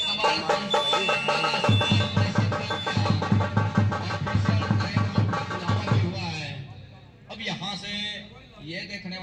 अब यहाँ से ये देखने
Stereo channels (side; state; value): both; identical; correlation 1.00